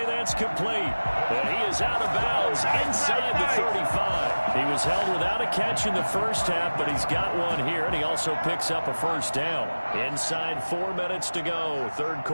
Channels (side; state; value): both; inverted; correlation -1.00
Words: That's complete. And he is out of bounds inside the 35. He was held without a catch in the first half, but he's got one here, and he also picks up a first down. Inside 4 minutes to go, 3rd